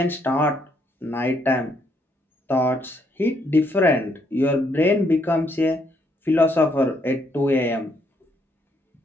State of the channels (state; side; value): normal; both; correlation 0.72